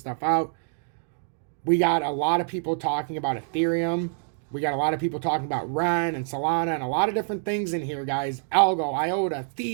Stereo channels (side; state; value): left; silent; 61 dB below the other